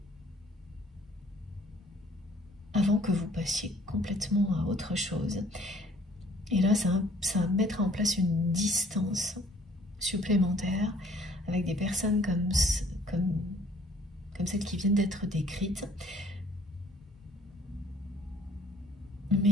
avant que vous passiez complètement à autre chose. Et là, ça va mettre en place une distance supplémentaire avec des personnes comme celles qui viennent d'être décrites.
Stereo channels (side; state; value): both; normal; correlation 0.58